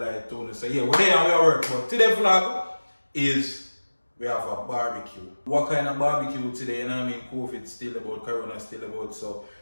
too. So yeah, we're there and we are work. But today's vlog is we have a barbecue. What kind of barbecue today? You know what I mean? COVID still about, Corona still about, so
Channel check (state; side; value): inverted; both; correlation -1.00